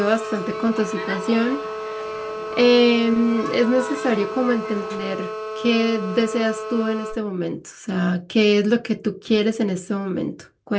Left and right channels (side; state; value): both; identical; correlation 1.00